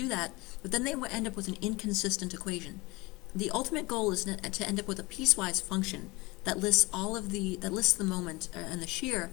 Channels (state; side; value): quieter; right; 23.5 dB